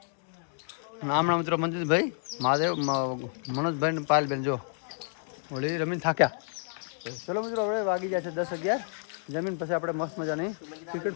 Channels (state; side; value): silent; right; 58 dB below the other